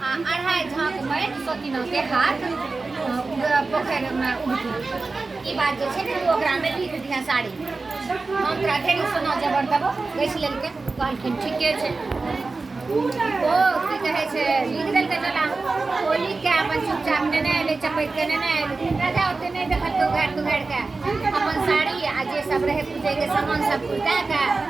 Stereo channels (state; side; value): quieter; left; 3.8 dB